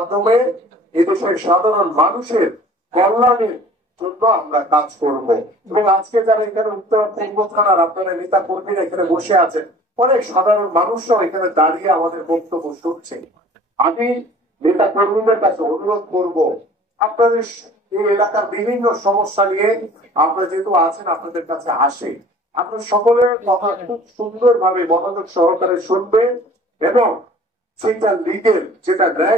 এদেশের সাধারণ মানুষের কল্যাণের জন্য আমরা কাজ করব। এবং আজকে যারা এখানে উত্তর পূর্ব থানার আপনারা নেতা কর্মীরা এখানে বসে আছেন, অনেক সাধারণ মানুষরাও এখানে দাঁড়িয়ে আমাদের বক্তব্য শুনছে। আমি নেতা কর্মীদের কাছে অনুরোধ করব, আপনাদের এই এলাকার বিভিন্ন সমস্যা নিয়ে আপনারা যেহেতু আছেন, আপনাদের কাছে আসে, আপনার সকলের কথা খুব সুন্দরভাবে মনোযোগ সহকারে শুনবেন এবং সেটা লিগেল, যেটা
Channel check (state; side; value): normal; both; correlation 0.48